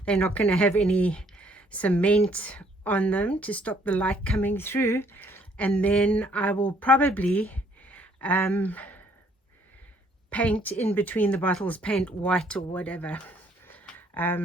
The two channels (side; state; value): both; normal; correlation 0.64